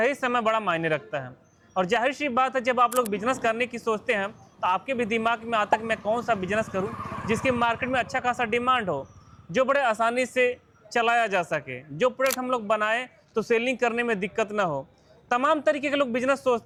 समय बड़ा मायने रखता है। और जाहिर सी बात है, जब आप लोग बिजनेस करने की सोचते हैं तो आपके भी दिमाग में आता है कि मैं कौन सा बिजनेस करूं जिसकी मार्केट में अच्छा खासा डिमांड हो, जो बड़े आसानी से चलाया जा सके, जो प्रोडक्ट हम लोग बनाएं तो सेलिंग करने में दिक्कत ना हो। तमाम तरीके के लोग बिजनेस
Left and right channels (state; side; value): identical; both; correlation 1.00